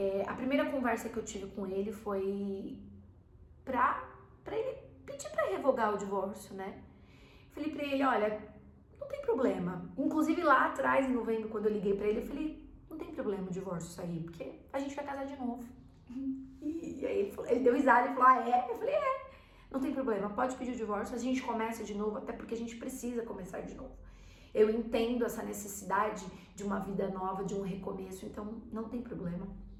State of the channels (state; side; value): identical; both; correlation 1.00